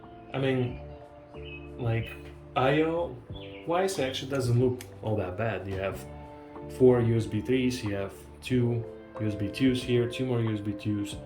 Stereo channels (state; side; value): identical; both; correlation 1.00